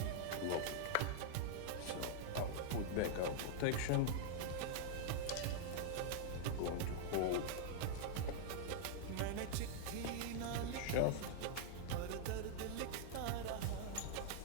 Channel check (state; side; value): different; both; correlation -0.01